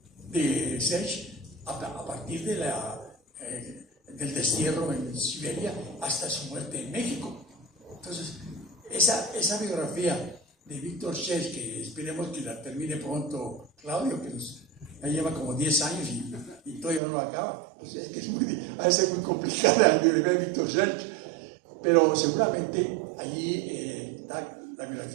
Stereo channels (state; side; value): drops out; left; at 17.0 s